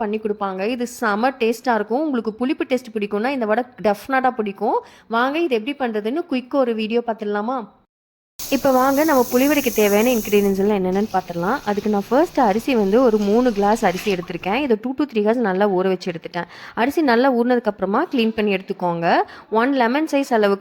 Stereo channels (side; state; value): both; identical; correlation 1.00